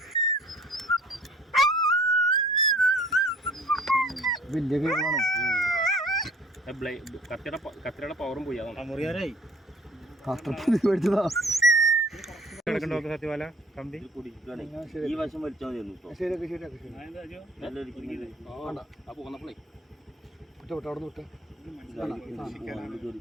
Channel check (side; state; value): both; normal; correlation 0.52